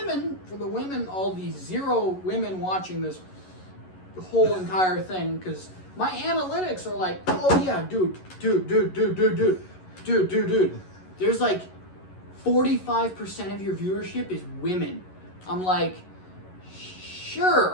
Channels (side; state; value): right; late; 11 ms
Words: all the 0 women watching this whole entire thing, because my analytics are like, oh yeah, dude. There's like 45% of your viewership is women. I'm like,